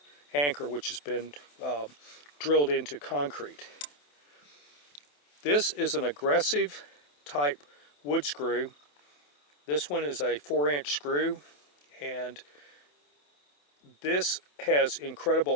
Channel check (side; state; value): right; late; 27 ms